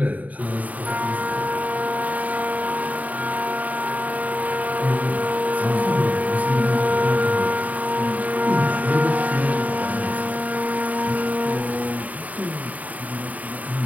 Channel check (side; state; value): left; late; 0.073 ms